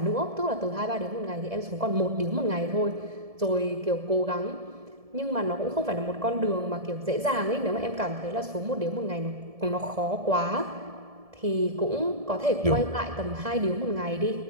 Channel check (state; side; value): late; left; 1.7 ms